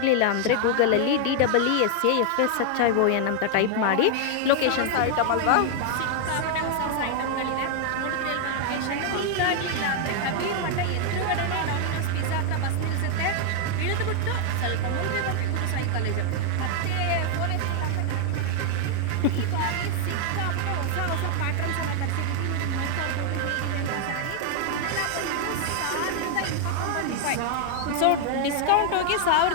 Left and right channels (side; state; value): both; different; correlation 0.00